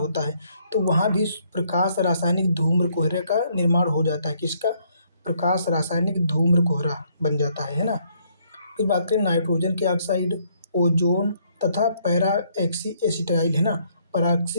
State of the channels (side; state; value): both; inverted; correlation -0.69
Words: है, तो वहाँ भी प्रकाश रासायनिक धूम्र कोहरे का निर्माण हो जाता है। किसका, प्रकाश रासायनिक धूम्र कोहरा बन जाता है ना। फिर बात करें नाइट्रोजन के ऑक्साइड, ओजोन तथा पैरा एक्सी एसिटाइल, है ना,